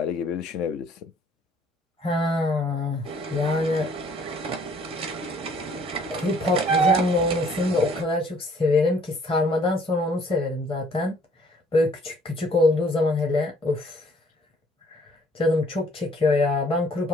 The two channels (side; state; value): both; normal; correlation 0.60